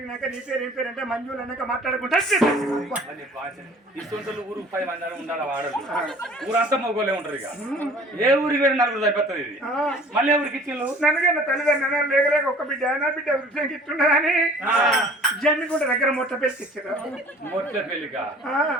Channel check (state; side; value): normal; both; correlation 0.49